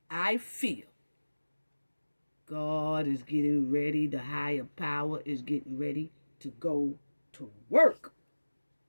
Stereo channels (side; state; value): both; inverted; correlation -1.00